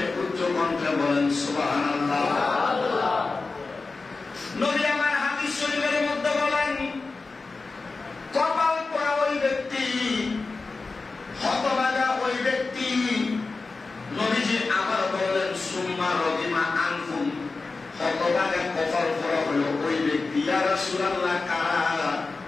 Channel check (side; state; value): right; quieter; 3.9 dB